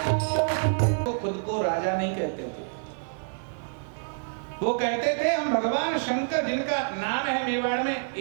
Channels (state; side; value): silent; left; 60 dB below the other